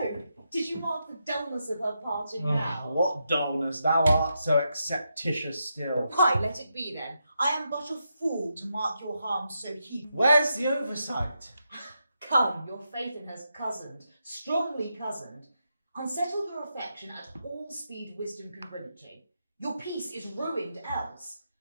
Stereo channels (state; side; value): inverted; both; correlation -0.84